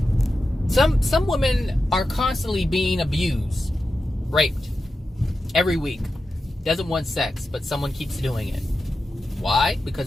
Some women are constantly being abused, raped, every week. Doesn't want sex, but someone keeps doing it. Why?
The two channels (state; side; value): normal; both; correlation 0.91